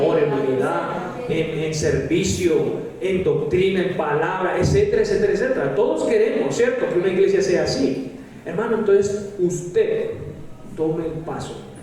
en unidad, en servicio, en doctrina, en palabra, etcétera, etcétera, etcétera. Todos queremos, ¿cierto?, que una iglesia sea así. Hermano, entonces usted tome el paso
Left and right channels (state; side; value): identical; both; correlation 1.00